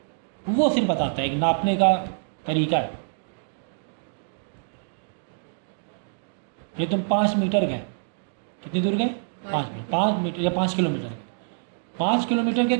वो सिर्फ बताता है। एक नापने का तरीका है। ये तुम 5 मीटर गए, कितनी दूर गए? 5 मीटर या 5 किलोमीटर गए। 5 किलोमीटर के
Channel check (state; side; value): silent; left; digital silence